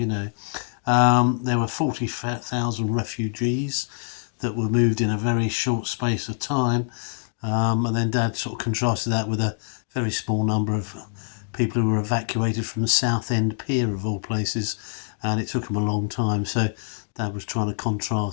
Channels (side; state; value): right; silent; digital silence